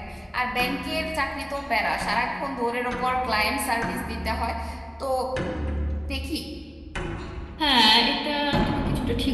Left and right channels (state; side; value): identical; both; correlation 1.00